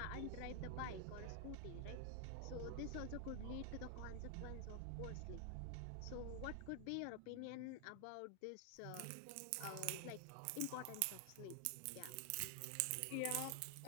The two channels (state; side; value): different; both; correlation 0.00